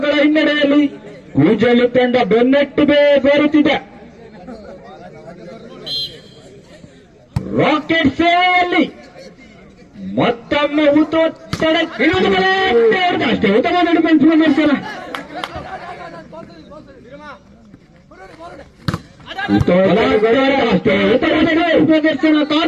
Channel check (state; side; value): identical; both; correlation 1.00